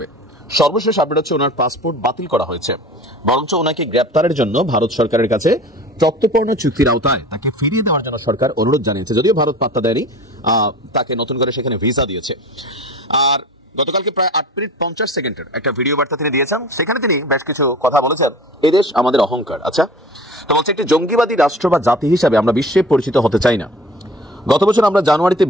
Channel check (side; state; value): both; normal; correlation 0.41